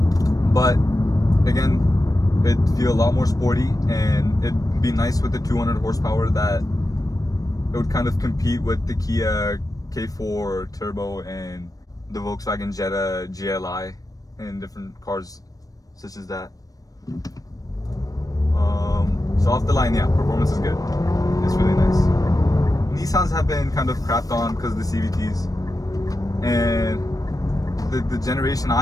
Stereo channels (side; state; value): right; late; 0.18 ms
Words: but again, it'd feel a lot more sporty, and it'd be nice with the 200 horsepower that it would kind of compete with the Kia K4 Turbo and the Volkswagen Jetta GLI and different cars such as that. So off the line, yeah, performance is good. It's really nice. Nissans have been kind of crapped on because of the CVTs, and the generation